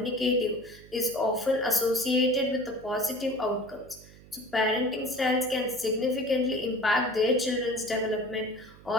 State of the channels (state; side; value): noise; right; hum, 21 dB below the sound